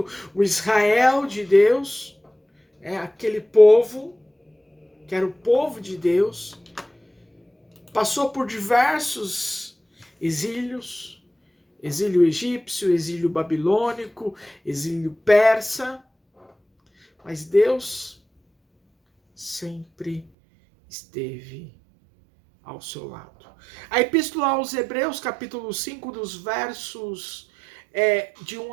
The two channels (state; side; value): drops out; left; at 20.2 s